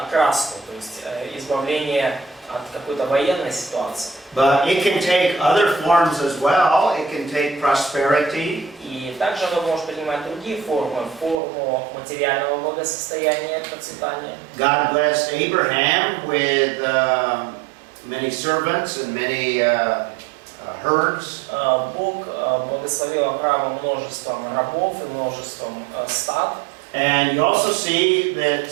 то есть избавление от какой-то военной ситуации. But it can take other forms as well. It can take prosperity. И также оно может принимать другие формы, форму материального благосостояния, процветания. God blessed Abraham with many servants and many herds. Бог благословил Авраама множеством рабов и множеством стад. And you also see that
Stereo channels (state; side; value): drops out; left; at 11.4 s